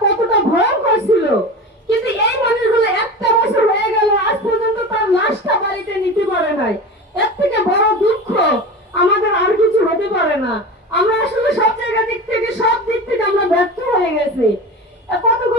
কতটা ভয়ঙ্কর ছিল। কিন্তু এই মানুষগুলো 1টা বছর হয়ে গেল, আজ পর্যন্ত তার লাশটা বাড়িতে নিতে পারে নাই। এর থেকে বড় দুঃখ আমাদের আর কিছু হতে পারে না। আমরা আসলে সব জায়গা দিক থেকে, সব দিক থেকে আমরা ব্যর্থ হয়ে গেছি।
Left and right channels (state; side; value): normal; both; correlation 0.30